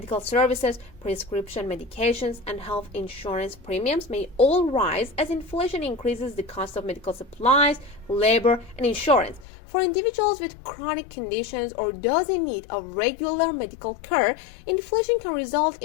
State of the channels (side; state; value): right; drops out; at 9.5 s